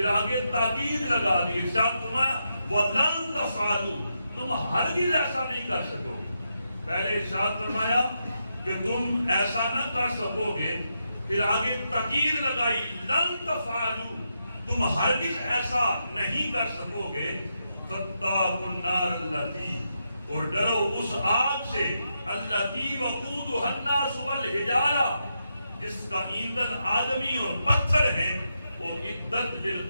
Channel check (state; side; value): inverted; both; correlation -0.84